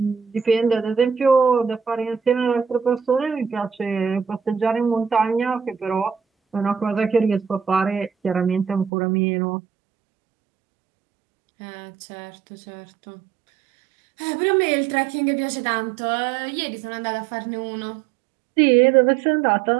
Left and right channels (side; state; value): left; drops out; at 8.9 s